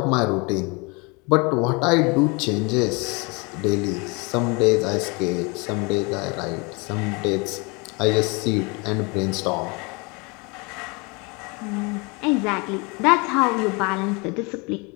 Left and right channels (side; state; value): right; quieter; 29.0 dB